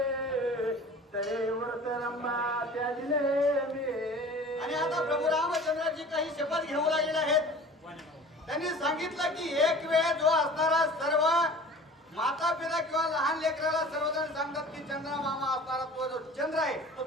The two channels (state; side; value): normal; both; correlation 0.43